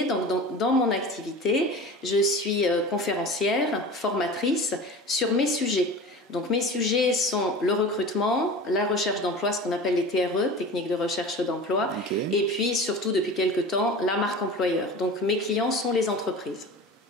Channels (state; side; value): normal; both; correlation 0.35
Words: Donc, dans mon activité, je suis conférencière, formatrice sur mes sujets. Donc mes sujets sont le recrutement, la recherche d'emploi, ce qu'on appelle les TRE, techniques de recherche d'emploi, okay. Et puis surtout depuis quelques temps, la marque employeur. Donc mes clients sont les entreprises.